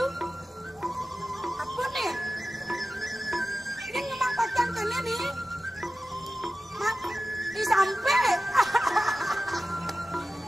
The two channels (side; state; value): both; normal; correlation 0.94